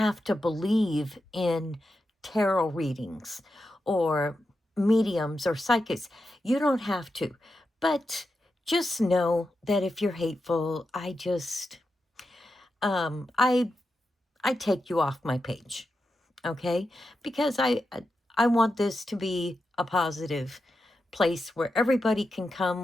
to believe in tarot readings or mediums or psychics. You don't have to. But just know that if you're hateful, I take you off my page. Okay? Because I want this to be a positive place where everybody can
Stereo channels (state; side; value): normal; both; correlation 0.88